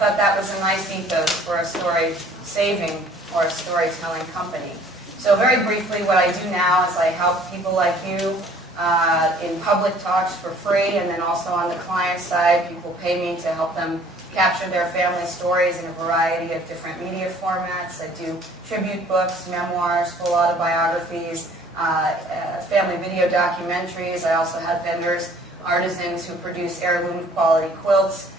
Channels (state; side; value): normal; both; correlation 0.55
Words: that was a nice ethos for a story saving or a storytelling company. So very briefly, what I do now is I help people like you in public talks for free, and then also on the client side, people pay me to help them capture their family stories in a variety of different media formats. I do tribute books, memoirs, full autobiographies, family video documentaries. I also have vendors, artisans who produce heirloom quality quilts